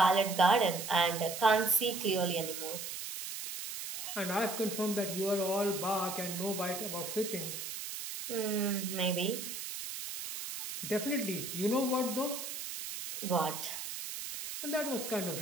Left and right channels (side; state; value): right; noise; hiss, 7 dB below the sound